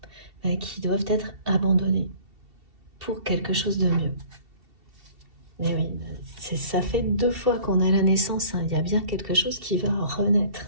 qui doivent être abandonnés pour quelque chose de mieux. Mais oui, ça fait 2 fois qu'on a la naissance, hein. Il y a bien quelque chose qui va renaître.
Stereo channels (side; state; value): left; late; 2.7 ms